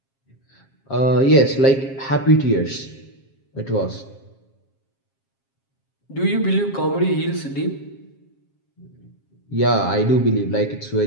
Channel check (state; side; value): late; right; 7.4 ms